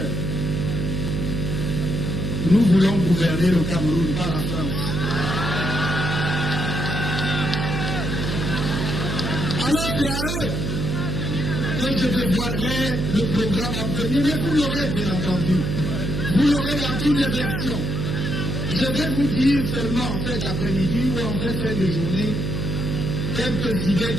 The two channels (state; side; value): noise; right; hum, 2 dB below the sound